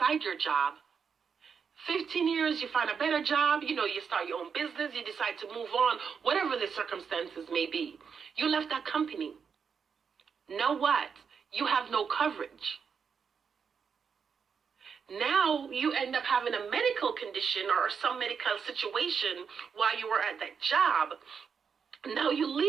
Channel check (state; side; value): quieter; left; 6.4 dB